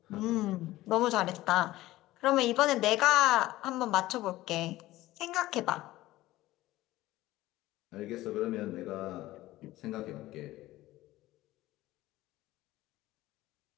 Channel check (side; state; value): right; quieter; 16.7 dB